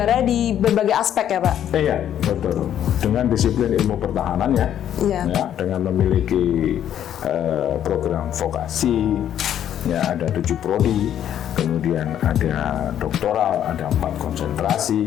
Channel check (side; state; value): right; quieter; 10.4 dB